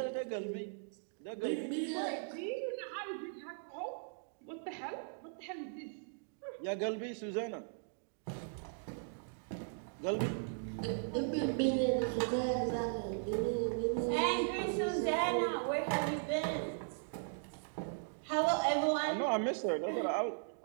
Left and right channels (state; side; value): silent; left; digital silence